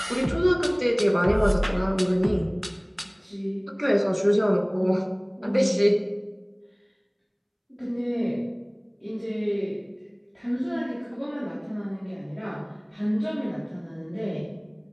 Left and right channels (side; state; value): both; identical; correlation 1.00